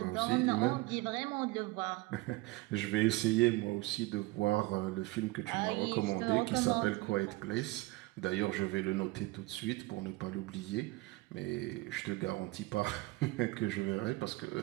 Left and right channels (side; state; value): left; quieter; 21.5 dB